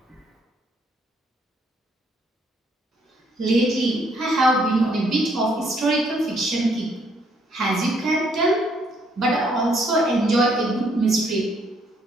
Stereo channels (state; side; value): normal; both; correlation 0.69